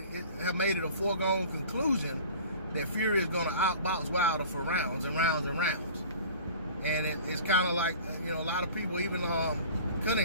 made it a foregone conclusion that Fury is going to outbox Wilder for rounds and rounds and rounds. And it's kind of like, you know, a lot of people, even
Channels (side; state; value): both; inverted; correlation -0.42